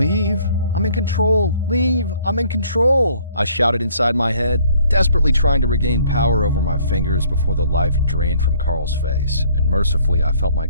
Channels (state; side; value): inverted; both; correlation -0.59